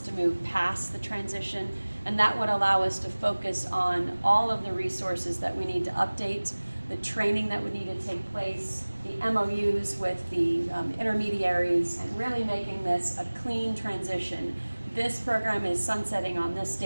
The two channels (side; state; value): both; inverted; correlation -1.00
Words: to move past the transition. And that would allow us to focus on all of the resources that we need to update, the training that would need to take place, the MOUs with the intermediaries and really making this a clean transition. This program is sunsetting on this